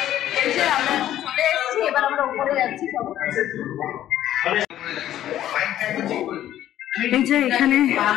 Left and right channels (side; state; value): right; quieter; 12.3 dB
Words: এই যে আমরা চলে এসেছি, এবার আমরা উপরে যাচ্ছি। এই যে এখানে